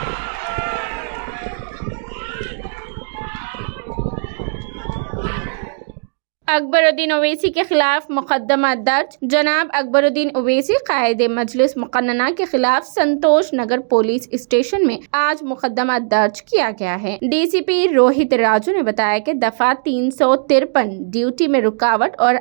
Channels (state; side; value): silent; left; digital silence